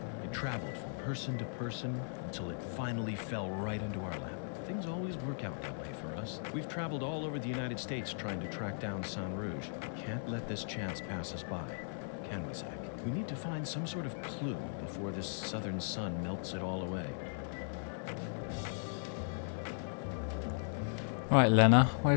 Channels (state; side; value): silent; right; digital silence